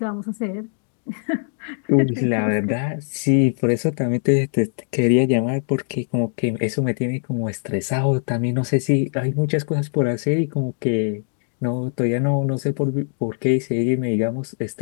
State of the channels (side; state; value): right; silent; digital silence